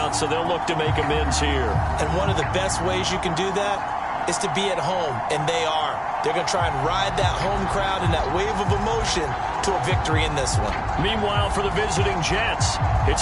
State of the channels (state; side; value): identical; both; correlation 1.00